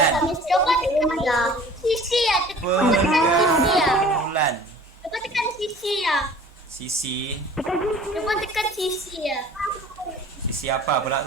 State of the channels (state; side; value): normal; both; correlation 0.47